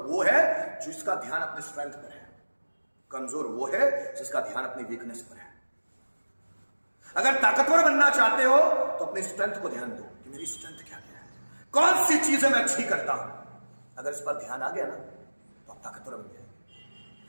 वो है जिसका ध्यान अपने स्ट्रेंथ पर है, कमजोर वो है जिसका ध्यान अपनी वीकनेस पर है। अगर ताकतवर बनना चाहते हो तो अपनी स्ट्रेंथ को ध्यान दो कि मेरी स्ट्रेंथ क्या है, कौन सी चीजें मैं अच्छी करता हूं। अगर इस पर ध्यान आ गया ना तो आप ताकतवर बन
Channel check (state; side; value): inverted; both; correlation -1.00